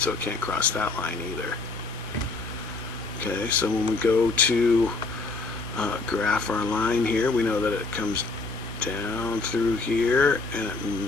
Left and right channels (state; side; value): quieter; right; 3.7 dB